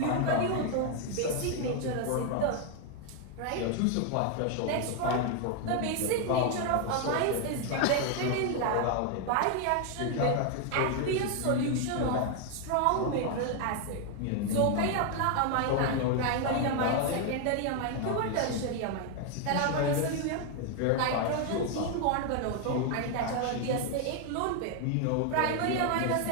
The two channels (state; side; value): different; both; correlation 0.01